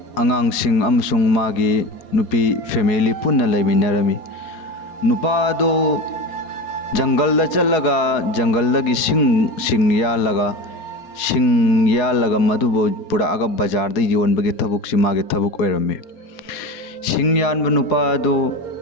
अंगांगसिंग अमसुंग मागी नुपी फैमिली पुन्ना लेमिनरमी नुपादो जंगल चलगा जंगल की सिंग यालगा मधुबो पुरागा बाजार द योनबगे थबुक सिमागे थबुक ओइरमे सिंग यानब नुपादो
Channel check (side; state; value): right; late; 4.7 ms